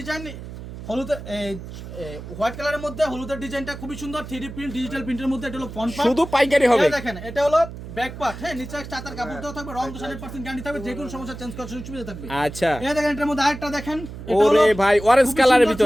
হলুদের হোয়াইট কালারের মধ্যে হলুদের ডিজাইনটা খুবই সুন্দর, 3D প্রিন্ট ডিজিটাল প্রিন্টের মধ্যে। এটা হলো ফ্রন্ট পার্ট, শুধু পাইকারি হবে। দেখেন এটা হলো ব্যাক পার্ট, হ্যাঁ নিচে চাতার কাপড় দেওয়া থাকবে, রং 100% গ্যারান্টি থাকবে, যে কোনো সমস্যা চেঞ্জ করার সুবিধা থাকবে। আচ্ছা এই দেখেন এটার মধ্যে আরেকটা দেখেন, ওরে ভাই অরেঞ্জ কালারের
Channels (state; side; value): noise; right; hum, 11 dB below the sound